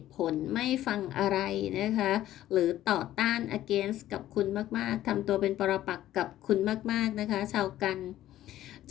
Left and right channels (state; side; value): quieter; right; 13.5 dB